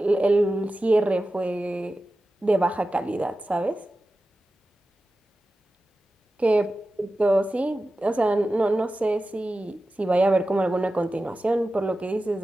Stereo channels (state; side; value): normal; both; correlation 0.94